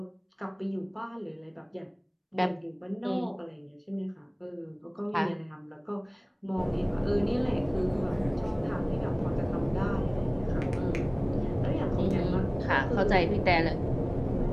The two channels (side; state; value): both; identical; correlation 1.00